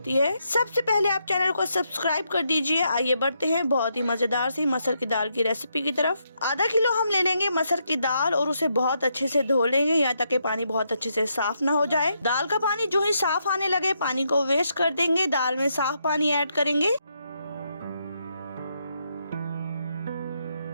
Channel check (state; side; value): inverted; both; correlation -0.79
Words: है। सबसे पहले आप चैनल को सब्सक्राइब कर दीजिए। आइए बढ़ते हैं बहुत ही मजेदार सी मसर की दाल की रेसिपी की तरफ। आधा किलो हम ले लेंगे मसर की दाल और उसे बहुत अच्छे से धो लेंगे यहाँ तक कि पानी बहुत अच्छे से साफ ना हो जाए। दाल का पानी जो ही साफ आने लगे पानी को वेस्ट कर देंगे। दाल में साफ पानी ऐड करेंगे।